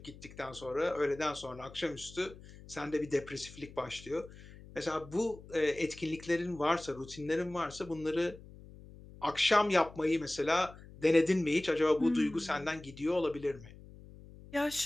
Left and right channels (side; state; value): left; noise; hum, 18 dB below the sound